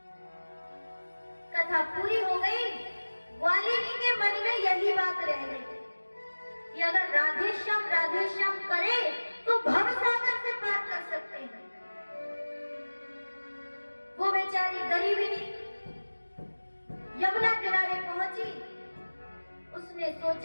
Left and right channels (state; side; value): inverted; both; correlation -1.00